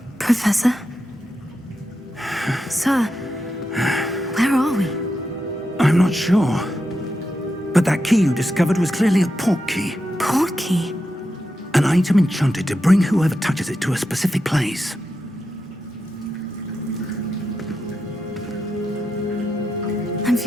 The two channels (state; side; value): normal; both; correlation 0.87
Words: Professor? Sir, where are we? I'm not sure. But that key you discovered was clearly a port key. Port key? An item enchanted to bring whoever touches it to a specific place. I'm